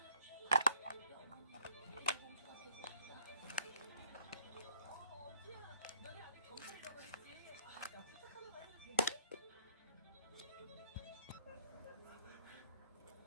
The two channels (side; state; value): both; inverted; correlation -0.63